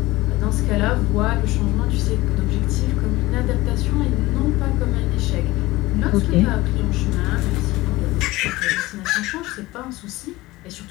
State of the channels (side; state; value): right; quieter; 19.2 dB